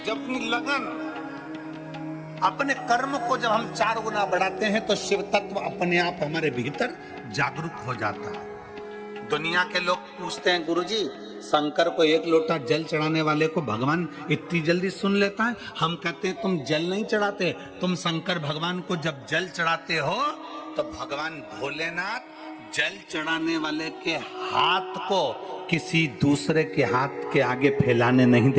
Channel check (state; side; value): identical; both; correlation 1.00